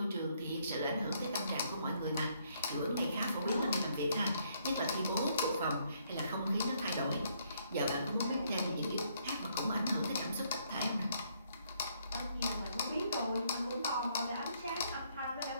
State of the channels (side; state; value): both; inverted; correlation -0.70